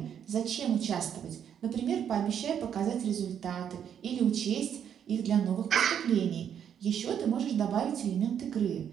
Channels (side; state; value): left; quieter; 8.7 dB